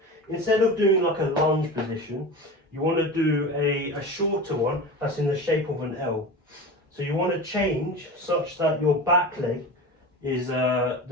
instead of doing like a lunge position, you want to do a shorter one that's in the shape of an L. So you want to change such that your back leg is the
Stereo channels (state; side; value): normal; both; correlation 0.30